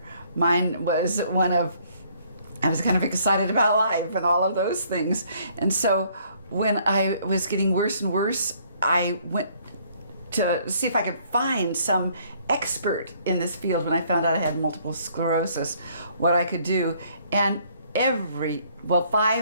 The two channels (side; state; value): both; inverted; correlation -0.63